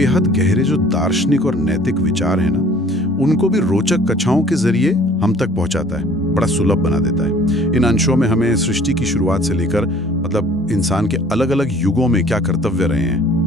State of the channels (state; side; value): normal; both; correlation 0.52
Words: गहरे जो दार्शनिक और नैतिक विचार है ना, उनको भी रोचक कथाओं के जरिए हम तक पहुंचाता है, बड़ा सुलभ बना देता है। इन अंशों में हमें सृष्टि की शुरुआत से लेकर मतलब इंसान के अलग अलग युगों में क्या कर्तव्य रहे